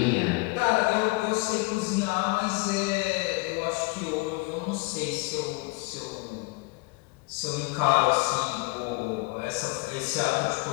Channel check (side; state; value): right; quieter; 26.6 dB